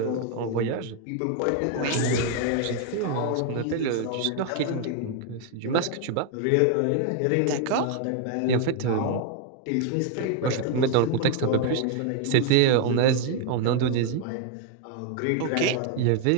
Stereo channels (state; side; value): different; both; correlation 0.00